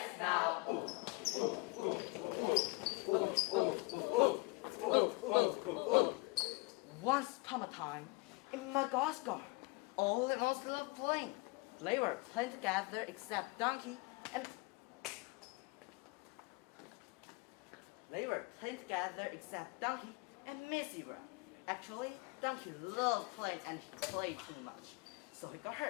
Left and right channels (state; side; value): quieter; right; 25.9 dB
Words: now. Once upon a time, in Madagascar, all the monsters were playing. They were playing together except Donkey and... They were playing together except Donkey and Miss Zebra. Actually, Donkey loved playing and he played too much, so he got